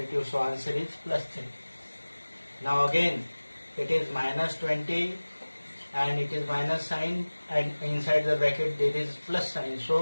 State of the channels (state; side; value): inverted; both; correlation -1.00